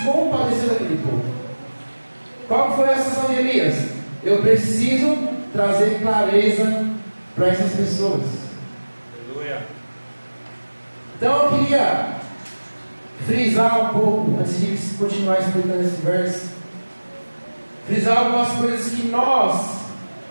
compadeceu daquele povo. Qual foi a sensação de Elias? Eu preciso trazer clareza para essas pessoas. Aleluia. Então eu queria frisar um pouco, antes de continuar explicando esse verso, frisar algumas coisas que nós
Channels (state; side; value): inverted; both; correlation -1.00